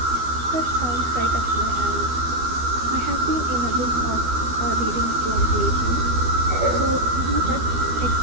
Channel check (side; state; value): left; late; 12 ms